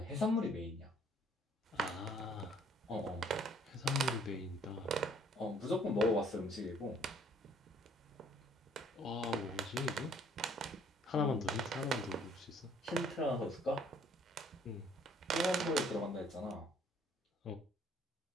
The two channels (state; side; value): normal; both; correlation 0.60